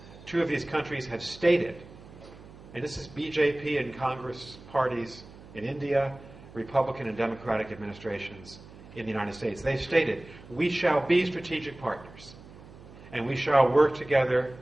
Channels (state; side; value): noise; right; hum, 19 dB below the sound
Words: 2 of these countries have stated, and this is BJP and Congress parties in India, Republican and Democratic administrations in the United States. They've stated, we shall be strategic partners, and we shall work together,